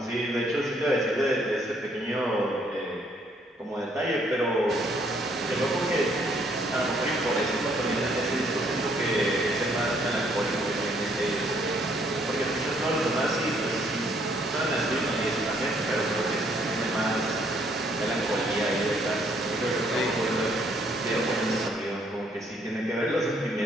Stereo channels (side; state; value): both; normal; correlation 0.67